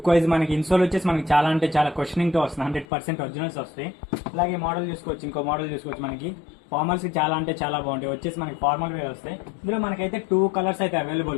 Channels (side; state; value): right; drops out; at 2.9 s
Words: వైజ్ మనకి ఇన్సోల్ వచ్చేసి మనకి చాలా అంటే చాలా క్వశ్చనింగ్ తో వస్తుంది. 100% ఒరిజినల్స్ వస్తాయి. అలాగే మోడల్ చూసుకోవచ్చు, ఇంకో మోడల్ చూసుకోవచ్చు. మనకి ఫార్మల్స్ కి చాలా అంటే చాలా బాగుంటాయి. వచ్చేసి మనకి ఫార్మల్ వేర్ వస్తాయి. ఇందులో మనకైతే 2 కలర్స్ అయితే